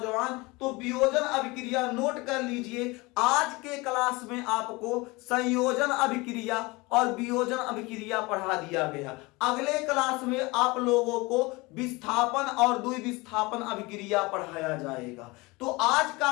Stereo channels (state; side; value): quieter; right; 23.9 dB